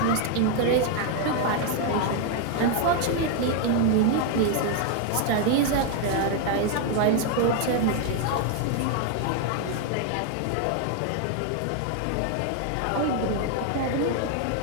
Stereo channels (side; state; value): both; different; correlation 0.00